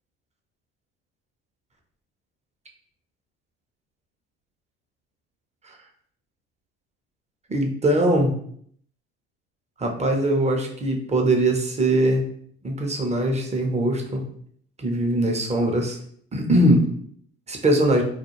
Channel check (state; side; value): normal; both; correlation 0.51